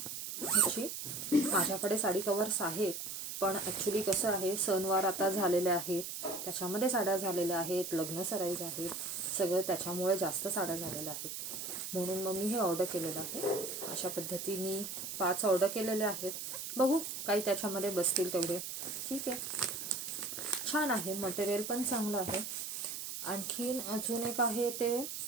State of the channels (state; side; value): noise; right; hiss, 6 dB below the sound